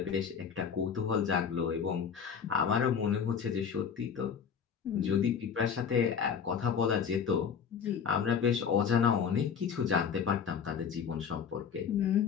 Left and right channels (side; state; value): right; quieter; 7.0 dB